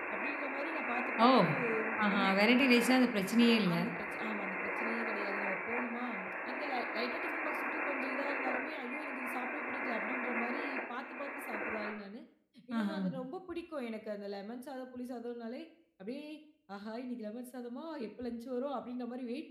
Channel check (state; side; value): identical; both; correlation 1.00